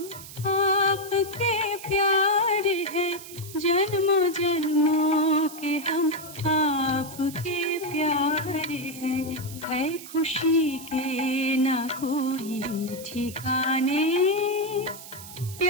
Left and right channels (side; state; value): right; noise; hiss, 14 dB below the sound